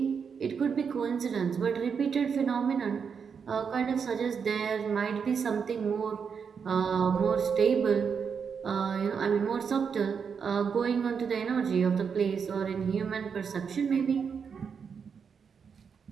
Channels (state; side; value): quieter; left; 6.4 dB